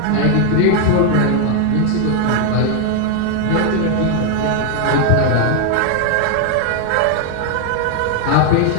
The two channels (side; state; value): both; different; correlation 0.00